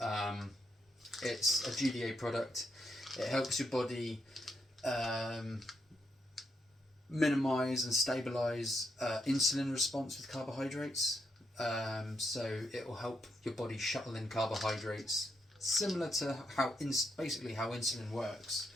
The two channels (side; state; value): both; normal; correlation 0.79